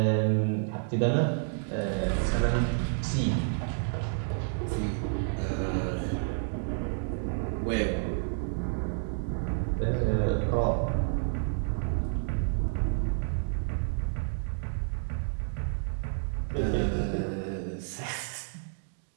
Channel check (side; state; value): left; silent; digital silence